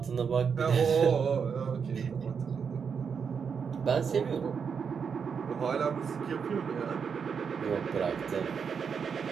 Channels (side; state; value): left; quieter; 6.4 dB